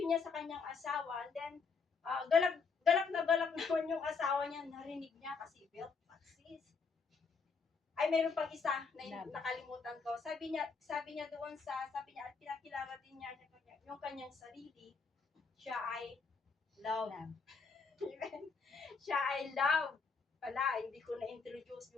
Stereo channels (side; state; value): right; quieter; 5.1 dB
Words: sa kanyang asawa, and then, galak naman yung asawa niya, narinig niya kasi belt taxis. Ay, mayroon pang isa na nakalimutan ko. Sabi niya at pinakilala din niya yung kanyang sarili, siya ay love. Siya ay love. Pala, hindi ko na-introduce